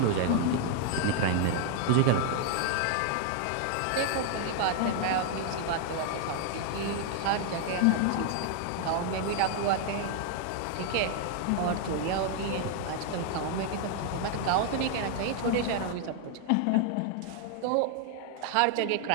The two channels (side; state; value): both; different; correlation 0.00